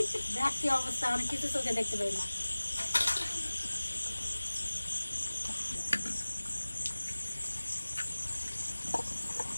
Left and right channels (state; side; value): inverted; both; correlation -1.00